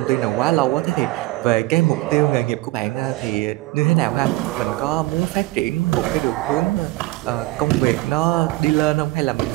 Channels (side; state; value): left; quieter; 19.8 dB